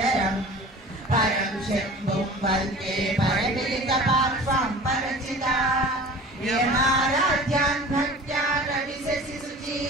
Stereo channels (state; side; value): normal; both; correlation 0.41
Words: परं शम्भुं वन्दे परमिलितपार्श्वं परचिता यमाराध्यान् भक्त्या रविशसि